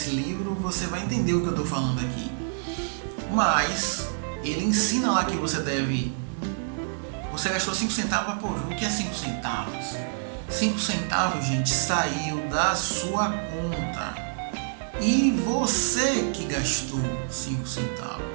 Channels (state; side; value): silent; left; digital silence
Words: livro, você vai entender o que eu estou falando aqui. Mas ele ensina lá que você deve... Você gastou 5 centavos, pô, o que é 5 centavos? 5 centavos, gente, saiu da sua conta. E você que gastou 5